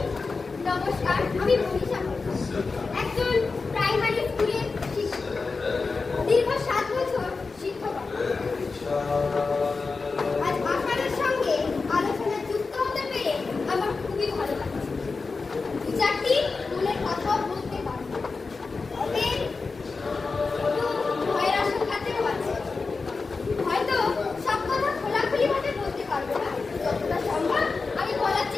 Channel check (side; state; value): right; quieter; 4.3 dB